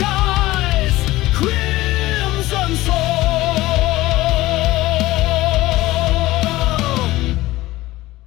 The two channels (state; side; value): quieter; right; 17.7 dB